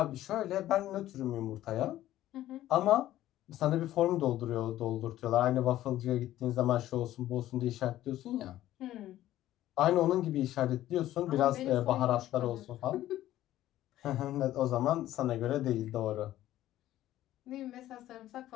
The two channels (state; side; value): quieter; right; 13.9 dB